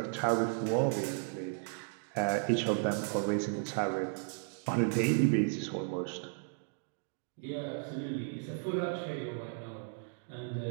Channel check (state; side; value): silent; left; 55 dB below the other